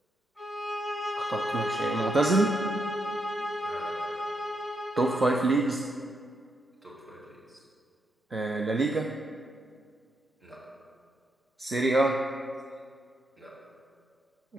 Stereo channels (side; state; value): both; normal; correlation 0.80